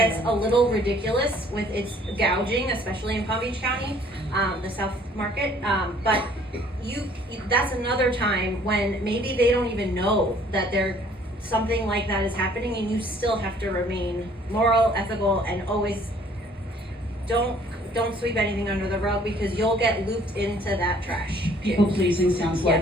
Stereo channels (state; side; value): normal; both; correlation 0.58